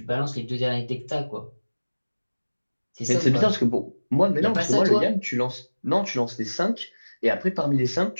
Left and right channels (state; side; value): inverted; both; correlation -1.00